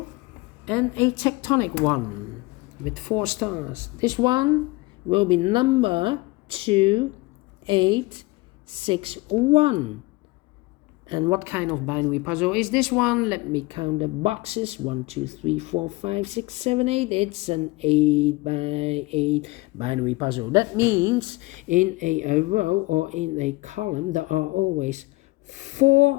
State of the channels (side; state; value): right; quieter; 22.3 dB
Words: and a tectonic one with 4 stars. This one will be number 2861. And what kind of binary puzzle is this one? Let me count the boxes. 1, 2, 3, 4, 5, 6, 7, 8. It's an 8 by 8 binary puzzle. That means in a row or in a column there are always